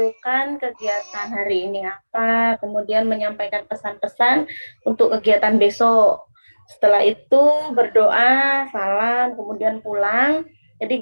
kegiatan hari ini apa, kemudian menyampaikan pesan-pesan untuk kegiatan besok. Setelah itu berdoa, salam, kemudian pulang. Jadi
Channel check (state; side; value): inverted; both; correlation -1.00